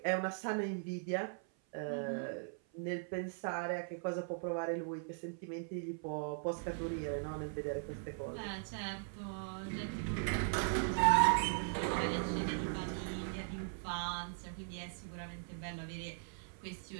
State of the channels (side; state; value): left; silent; 52 dB below the other